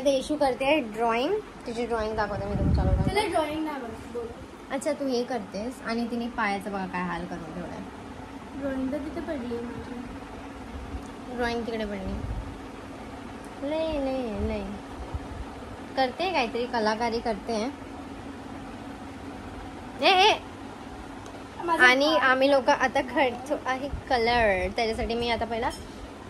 येशू करते ड्रॉइंग. तिची ड्रॉइंग दाखवते मी तुमच्याकडे. ड्रॉइंग नाही. अच्छा, तू हे करतेस आणि तिने पायाचं बघा काय हाल करून ठेवलाय. ड्रॉइंग तर तिथे पडली. ड्रॉइंग तिकडे पडली. लय करते, काहीतरी कलाकारी करते. आणि आम्ही लोक आता खेळतो आहे कलर. त्याच्यासाठी मी आता पहिला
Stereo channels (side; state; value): both; identical; correlation 1.00